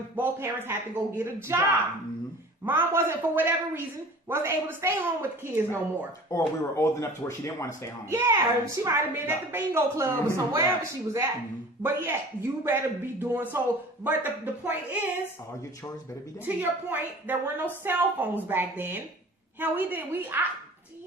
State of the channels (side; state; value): both; normal; correlation 0.43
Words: both parents had to go get a job. Mom wasn't, for whatever reason, wasn't able to stay home with the kids no more. Or we were old enough to where she didn't want to stay home. Yeah, she might have been at the bingo club or somewhere wherever she was at. But yeah, you better be doing so. But the point is, all your chores better be done. To your point, there were no cell phones back then. Hell, do